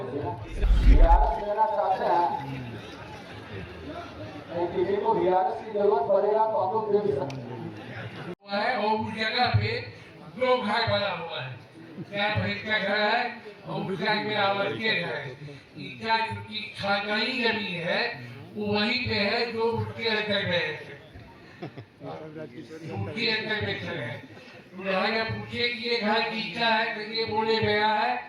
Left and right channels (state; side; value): identical; both; correlation 1.00